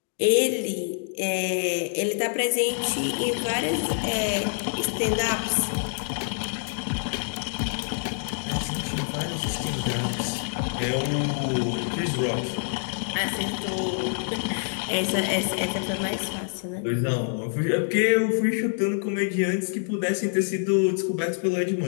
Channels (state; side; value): silent; right; digital silence